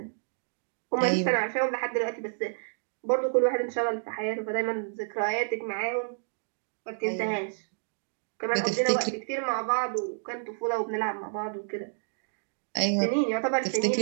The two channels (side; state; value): left; silent; digital silence